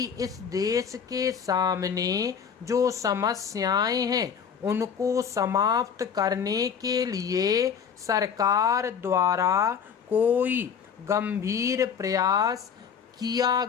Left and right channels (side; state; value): right; quieter; 7.1 dB